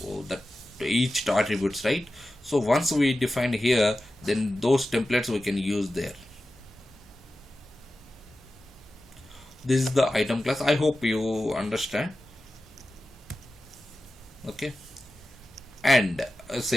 each attributes, right? So once we define here, then those templates we can use there. This is the item class. I hope you understand. Okay, and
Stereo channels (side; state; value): both; normal; correlation 0.94